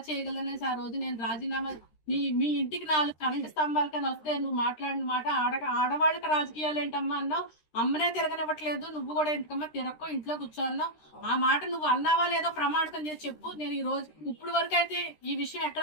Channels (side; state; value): right; late; 13 ms